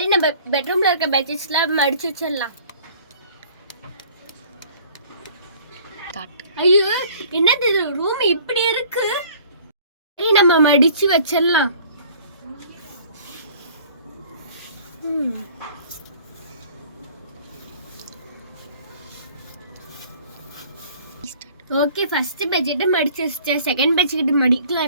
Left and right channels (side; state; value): both; inverted; correlation -0.52